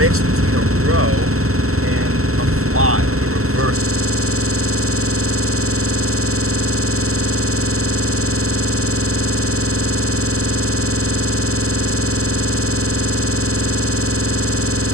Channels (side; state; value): left; late; 0.63 ms